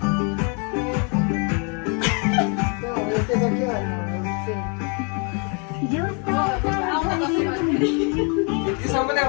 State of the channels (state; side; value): quieter; right; 36.1 dB